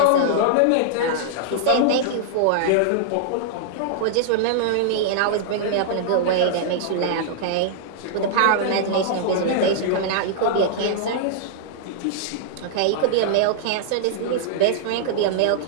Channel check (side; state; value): both; different; correlation -0.02